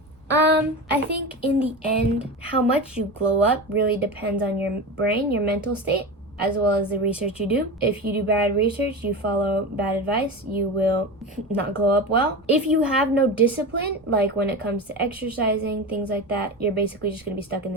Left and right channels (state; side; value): noise; right; rumble, 30 dB below the sound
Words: I think in the end, how much you glow up really depends on your brain, your mental state, as well as the research you do. If you do bad research, you follow bad advice, you will not glow up well. If you have no discipline, like when it comes to exercising, things like that, you're basically just going to be stuck in